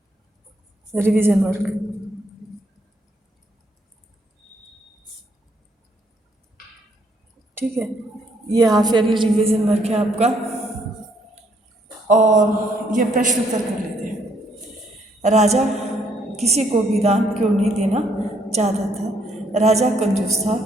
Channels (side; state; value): both; normal; correlation 0.69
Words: रिवीजन वर्क। ठीक है, ये हाफ ईयरली रिवीजन वर्क है आपका। और ये प्रश्न उत्तर कर लेते हैं। राजा किसी को भी दान क्यों नहीं देना चाहता था। राजा कंजूस था।